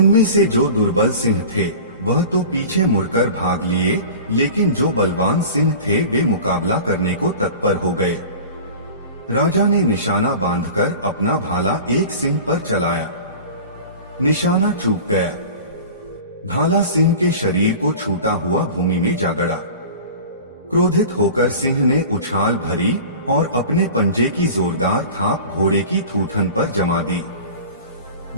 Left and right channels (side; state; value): both; inverted; correlation -0.38